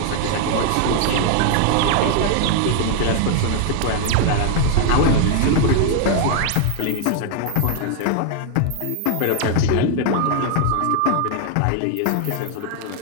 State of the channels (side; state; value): both; different; correlation 0.00